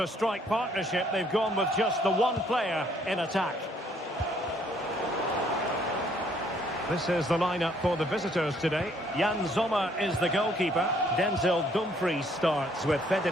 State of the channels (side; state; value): both; normal; correlation 0.65